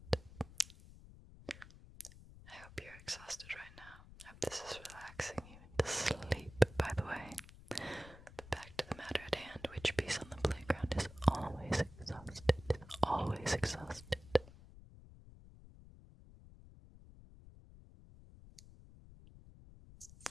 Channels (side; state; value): left; noise; rumble, 18 dB below the sound